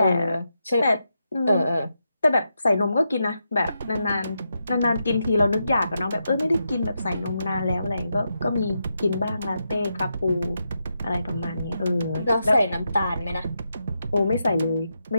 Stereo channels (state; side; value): inverted; both; correlation -0.85